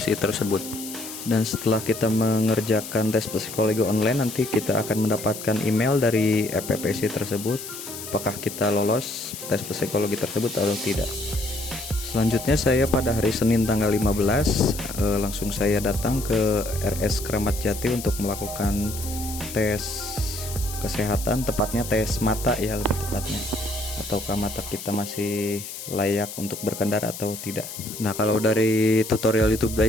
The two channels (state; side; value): noise; left; hiss, 10 dB below the sound